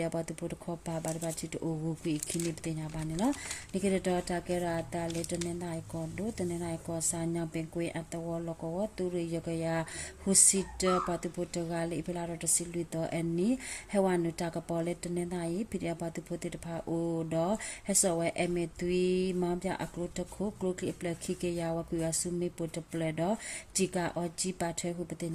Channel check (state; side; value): identical; both; correlation 1.00